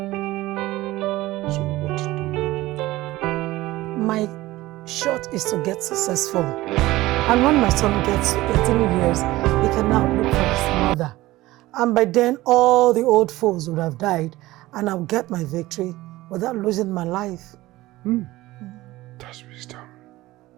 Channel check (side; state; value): left; quieter; 17.9 dB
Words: So what do we do? My shot is to get successful. And when my son gets to 18 years, he can now look for his mother. And by then, all the old foes would have died, and I'll get my victory without losing my life. That's wisdom.